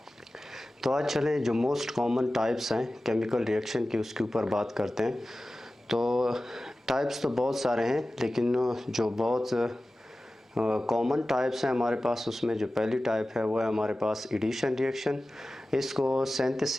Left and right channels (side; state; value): both; normal; correlation 0.96